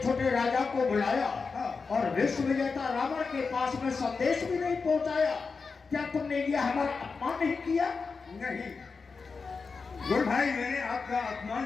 राजा को बुलाया और विश्व विजेता रावण के पास में संदेश भी नहीं पहुंचाया। क्या तुमने ये हमारा अपमान नहीं किया? नहीं गुरु भाई, मैंने आपका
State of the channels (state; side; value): quieter; right; 4.8 dB